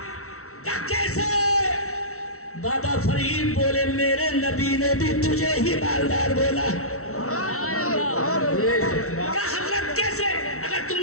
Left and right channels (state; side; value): late; right; 0.63 ms